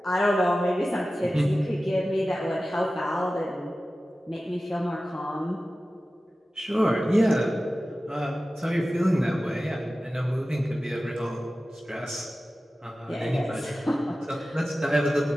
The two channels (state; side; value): normal; both; correlation 0.95